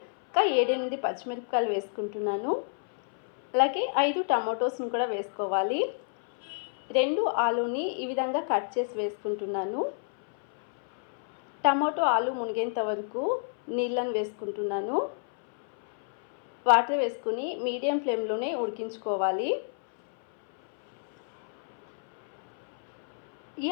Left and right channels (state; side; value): silent; right; 59 dB below the other